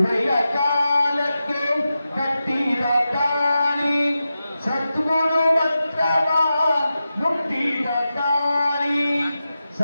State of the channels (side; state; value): both; inverted; correlation -0.91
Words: ಕಾಲಕ್ಕೆ ಕಟ್ಟಿದ ತಾಳಿ, ಸದ್ಗುರು ಮಂತ್ರವ ಮುಟ್ಟಿದ ತಾಳಿ,